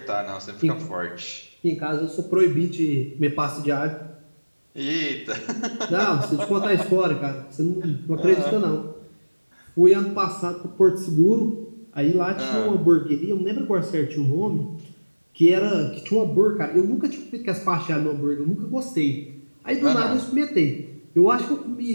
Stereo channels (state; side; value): inverted; both; correlation -1.00